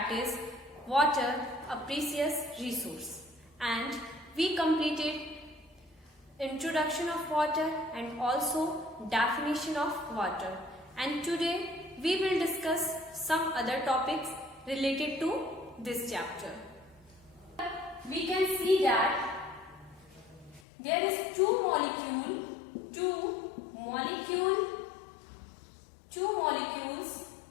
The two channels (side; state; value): right; drops out; at 20.6 s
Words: is water, a precious resource, and we completed introduction of water and also definition of water, and today we will discuss some other topics related to this chapter. We can see that there is two molecules